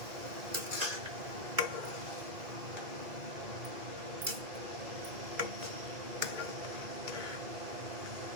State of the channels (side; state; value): left; late; 2.2 ms